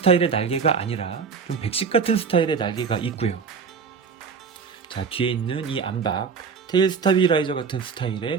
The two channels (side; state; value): left; quieter; 5.8 dB